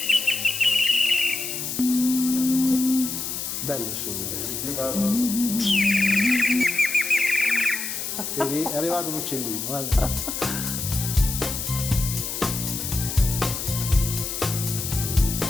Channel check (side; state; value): left; noise; hiss, 4 dB below the sound